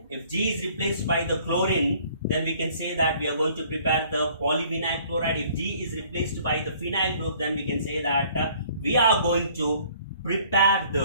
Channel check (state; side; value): inverted; both; correlation -0.57